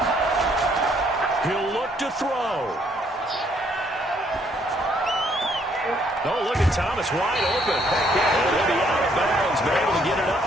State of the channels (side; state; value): both; normal; correlation 0.67